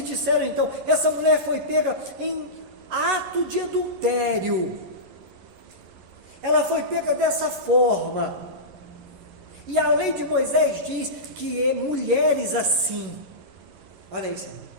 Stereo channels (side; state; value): left; late; 11 ms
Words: disseram então: essa mulher foi pega em ato de adultério, ela foi pega dessa forma, e a lei de Moisés diz que mulheres assim, olha isso,